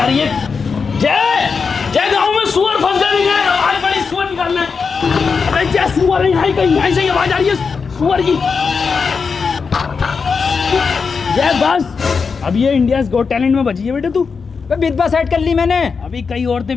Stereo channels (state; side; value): quieter; right; 5.3 dB